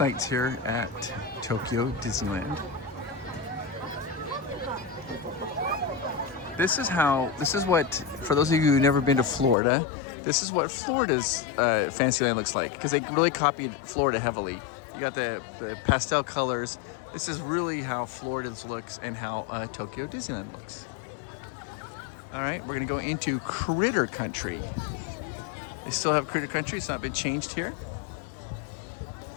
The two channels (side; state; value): right; drops out; at 9.6 s